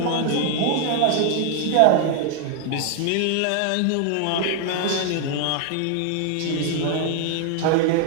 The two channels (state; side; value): different; both; correlation 0.00